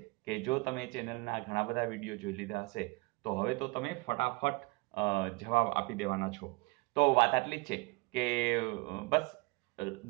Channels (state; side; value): quieter; left; 25.2 dB